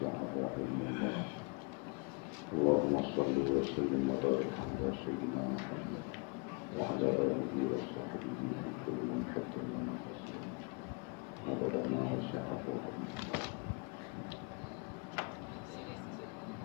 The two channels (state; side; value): quieter; right; 31.8 dB